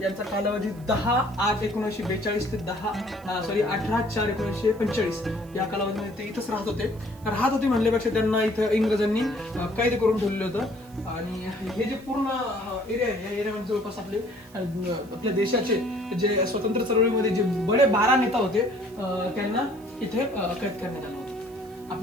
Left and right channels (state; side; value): noise; right; hiss, 26 dB below the sound